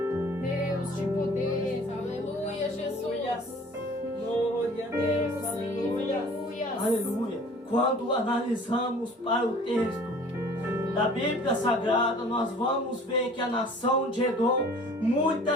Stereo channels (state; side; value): normal; both; correlation 0.49